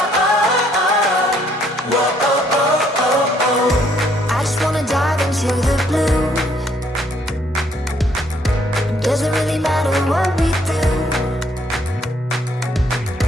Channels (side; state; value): both; normal; correlation 0.67